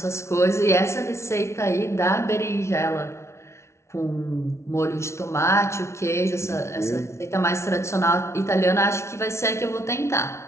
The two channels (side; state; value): right; late; 0.13 ms